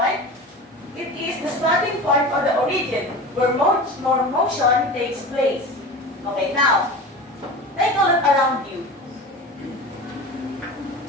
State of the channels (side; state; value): both; normal; correlation 0.33